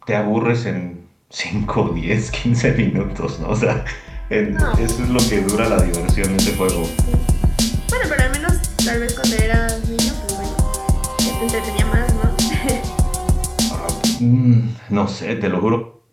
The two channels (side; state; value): both; identical; correlation 1.00